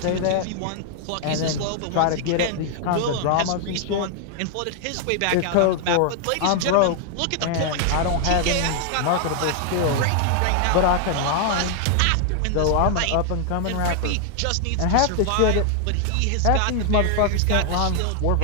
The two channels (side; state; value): both; different; correlation 0.00